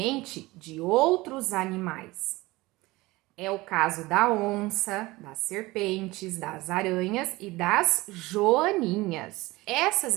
de outros animais. É o caso da onça, das serpentes, das aranhas e das joaninhas. Essas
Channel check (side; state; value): left; quieter; 20.5 dB